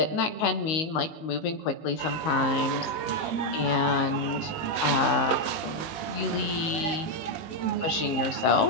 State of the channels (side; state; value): right; late; 19 ms